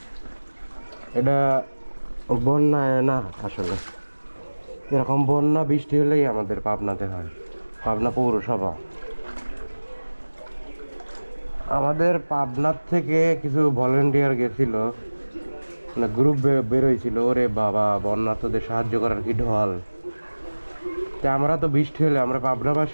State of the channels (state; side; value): inverted; both; correlation -1.00